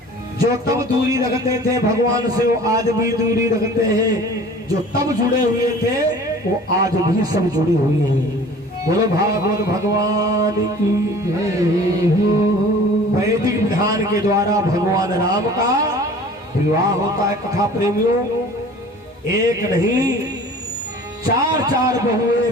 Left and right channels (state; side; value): normal; both; correlation 0.46